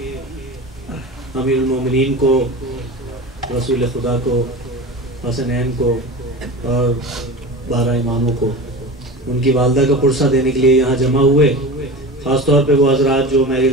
امیر المومنین کو، رسول خدا کو، حسنین کو اور 12 اماموں کو ان کی والدہ کا پرسہ دینے کے لیے یہاں جمع ہوئے۔ خاص طور پہ وہ حضرات جو میری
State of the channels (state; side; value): normal; both; correlation 0.30